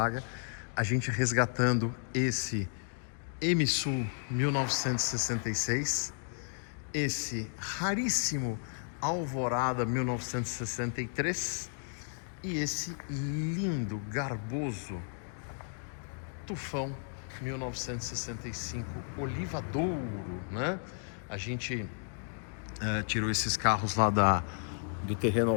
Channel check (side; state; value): right; silent; 55 dB below the other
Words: a gente resgatando esse MSU 1966, esse raríssimo Alvorada 1963 e esse lindo, garboso Tufão 1965 Oliva Douro, né? A gente tirou esses carros lá do terreno